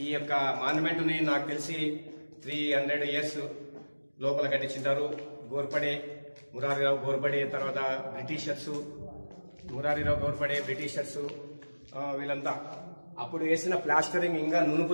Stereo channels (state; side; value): inverted; both; correlation -1.00